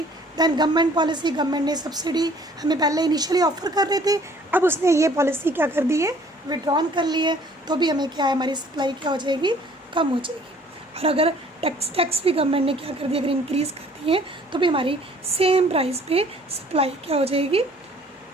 दैन गवर्नमेंट पॉलिसी, गवर्नमेंट ने सब्सिडी हमें पहले इनिशियली ऑफर कर रहे थे, अब उसने ये पॉलिसी क्या कर दी है, विड्रॉन कर ली है, तो भी हमें क्या है, हमारी सप्लाई क्या हो जाएगी, कम हो जाएगी. और अगर टैक्स भी गवर्नमेंट ने क्या कर दिया, अगर इंक्रीज़ कर दिए तो भी हमारी सेम प्राइस पे सप्लाई क्या हो जाएगी,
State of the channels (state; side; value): normal; both; correlation 0.56